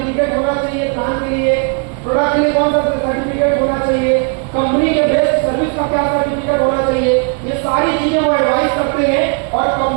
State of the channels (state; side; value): quieter; left; 36.6 dB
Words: होना चाहिए, प्लान के लिए, प्रोडक्ट के लिए कौन सा सर्टिफिकेट होना चाहिए, कंपनी के बेस्ट सर्विस का क्या सर्टिफिकेट होना चाहिए, ये सारी चीजें वो एडवाइस करते हैं और